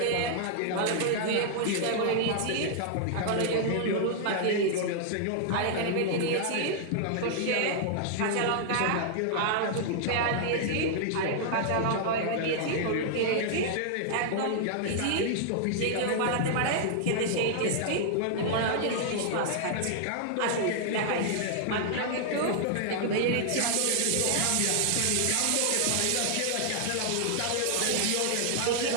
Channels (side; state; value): both; different; correlation 0.00